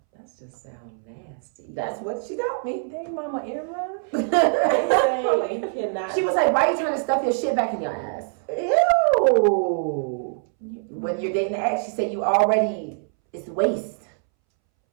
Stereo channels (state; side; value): silent; left; 63 dB below the other